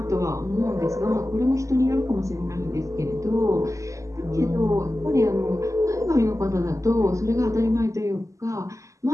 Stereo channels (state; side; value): late; left; 0.16 ms